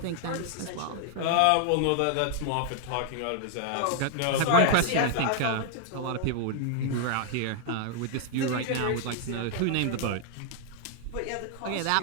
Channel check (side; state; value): both; different; correlation 0.00